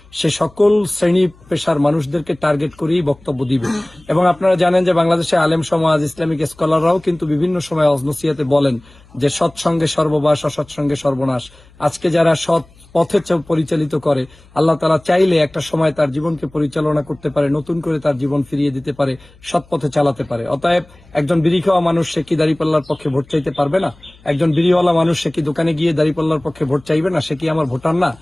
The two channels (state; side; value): noise; left; hum, 27 dB below the sound